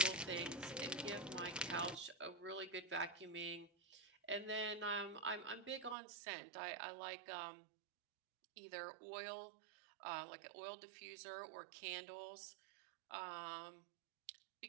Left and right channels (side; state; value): left; drops out; at 6.0 s